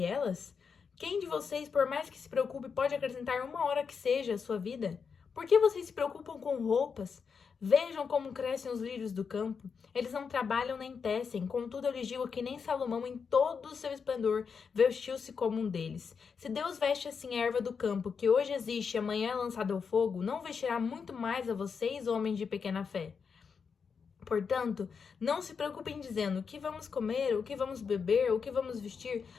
elas? Quem de vocês, por mais que se preocupe, pode acrescentar uma hora que seja à sua vida? Por que vocês se preocupam com roupas? Vejam como crescem os lírios do campo. Eles não trabalham nem tecem. Contudo, eu lhes digo que nem Salomão, em todo o seu esplendor, vestiu-se como um deles. Se Deus veste assim a erva do campo, que hoje existe e amanhã é lançada ao fogo, não vestirá muito mais a vocês, homens de pequena fé? Portanto, não se preocupem dizendo o que vamos comer, o que vamos beber, o que vamos vestir,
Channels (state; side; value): quieter; right; 5.9 dB